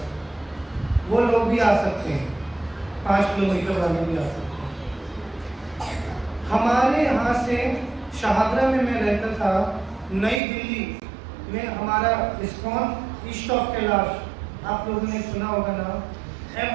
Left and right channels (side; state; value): left; drops out; at 10.4 s